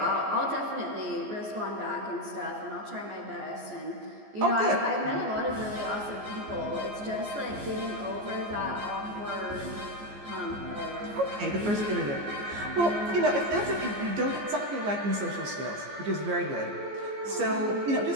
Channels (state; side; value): late; left; 14 ms